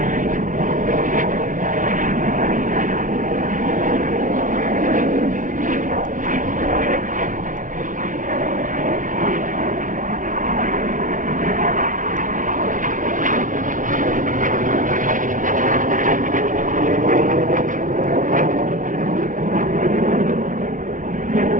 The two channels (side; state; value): left; late; 0.38 ms